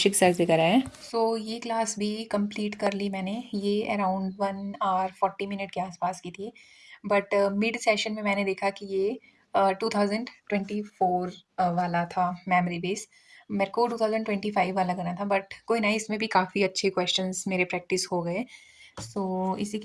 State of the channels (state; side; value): identical; both; correlation 1.00